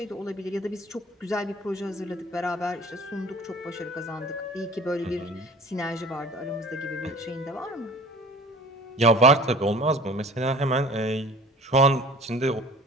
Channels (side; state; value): both; normal; correlation 0.43